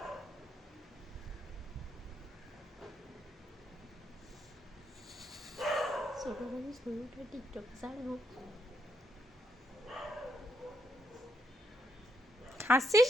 ছোটবেলায় ছবিটা টিকটক ছাড়বো। হাসছিস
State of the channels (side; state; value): both; normal; correlation 0.76